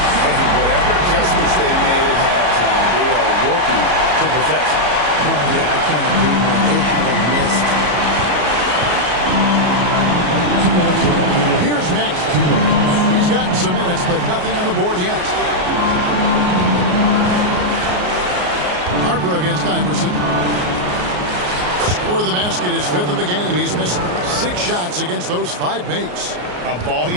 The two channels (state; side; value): late; left; 34 ms